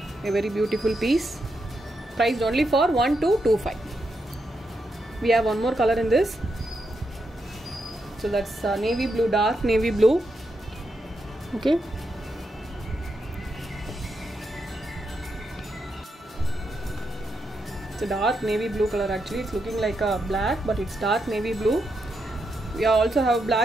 A very beautiful piece. Priced only for 1225. We have one more color in this. So that's navy blue, dark navy blue. Okay. It's a dark navy blue color actually. It's looking like a black, but it's dark navy blue. We also have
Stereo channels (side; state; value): both; normal; correlation 0.83